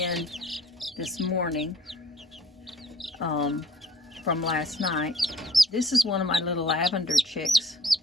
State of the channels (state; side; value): normal; both; correlation 0.55